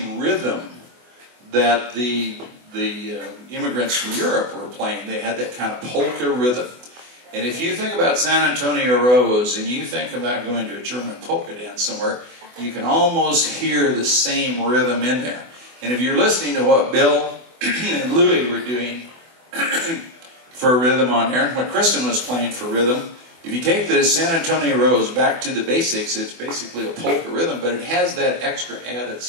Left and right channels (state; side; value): late; left; 24 ms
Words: rhythm that the immigrants from Europe were playing. They had that kind of polka rhythm. And if you think about San Antonio Rose and you think about going to a German polka dance somewhere, you can almost hear the same rhythm in there. And if you're listening to what Bill and Louie were doing for rhythm on there, what Kristyn was playing for rhythm, if you take the San Antonio Rose back to the basics, it's basically a polka rhythm, but it has that extra added